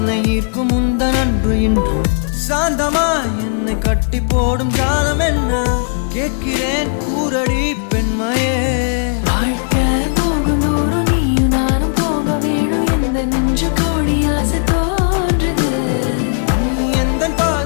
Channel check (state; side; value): silent; right; digital silence